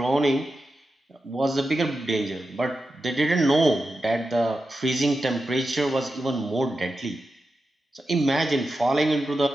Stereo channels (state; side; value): normal; both; correlation 0.91